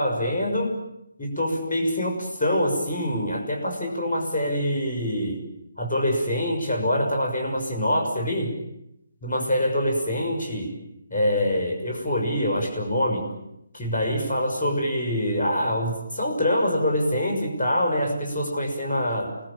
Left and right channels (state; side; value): inverted; both; correlation -0.71